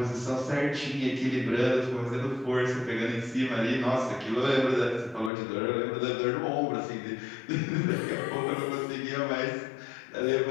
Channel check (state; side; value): drops out; right; at 5.3 s